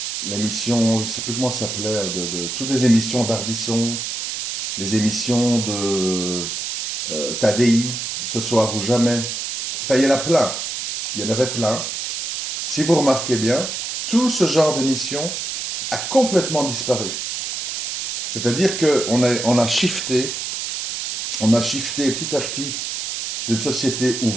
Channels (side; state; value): right; noise; hiss, 3 dB below the sound